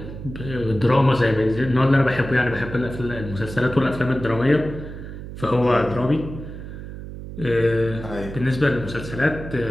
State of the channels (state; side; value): noise; right; hum, 11 dB below the sound